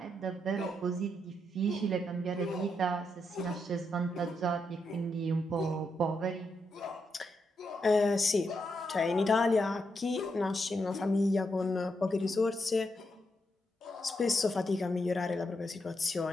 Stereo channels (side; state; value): both; normal; correlation 0.81